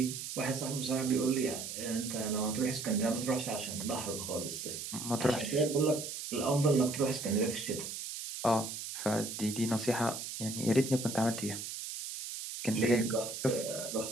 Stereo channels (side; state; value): right; noise; hiss, 7 dB below the sound